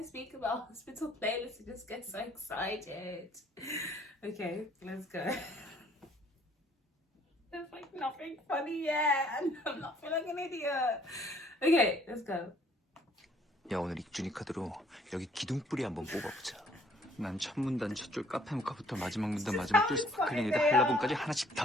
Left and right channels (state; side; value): normal; both; correlation 0.61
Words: speak about Hospital Playlist, I just get so excited. Okay, let's go. There's nothing funny yet, and I'm not feeling an idiot. Okay, let's go. 야, 오늘 익준이 카드로 여기 기둥뿌리 한번 뽑아보자. 난 첫 문단 첫 줄 카페 모카부터 마지막 문단 마지막 줄 스파클링에다 한라봉까지 하나씩